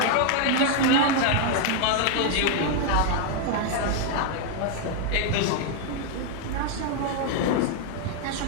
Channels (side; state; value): both; different; correlation 0.00